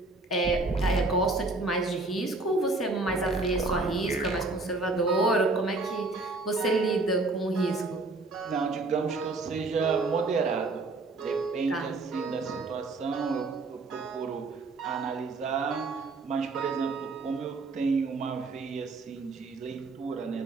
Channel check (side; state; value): left; quieter; 3.3 dB